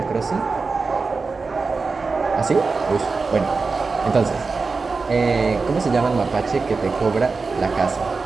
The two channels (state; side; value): quieter; left; 4.3 dB